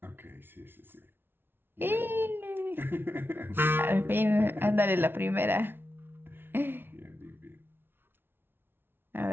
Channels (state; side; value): late; left; 0.11 ms